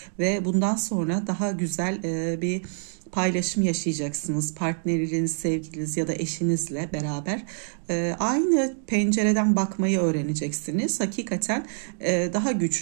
ve bundan sonra daha güzel bir paylaşım yaşayacaksınız. Partneriniz, sevgiliniz ya da eşinizle beraber aynı pencereden bakmayı öğreneceksiniz. Hakikaten daha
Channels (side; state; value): left; silent; digital silence